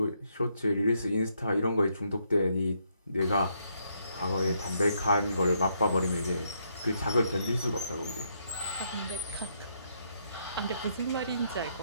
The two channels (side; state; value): both; inverted; correlation -0.75